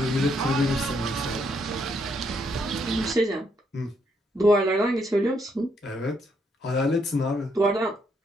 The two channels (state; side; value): normal; both; correlation 0.74